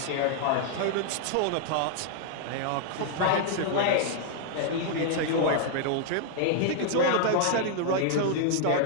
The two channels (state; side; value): different; both; correlation -0.01